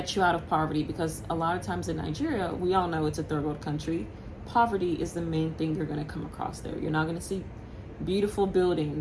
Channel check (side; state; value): both; identical; correlation 1.00